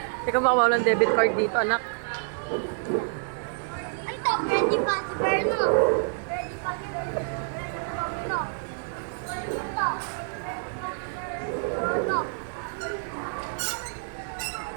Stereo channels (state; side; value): silent; left; 59 dB below the other